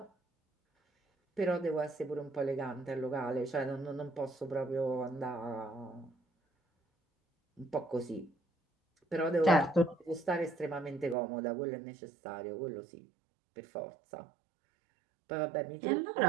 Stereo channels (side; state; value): left; drops out; at 11.2 s